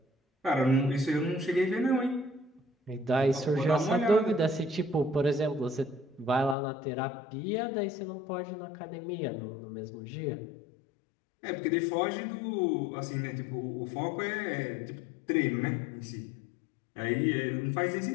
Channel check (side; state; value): right; drops out; at 6.6 s